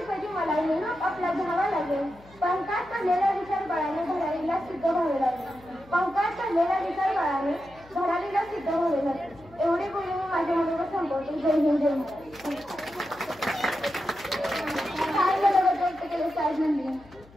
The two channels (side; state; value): left; noise; hum, 24 dB below the sound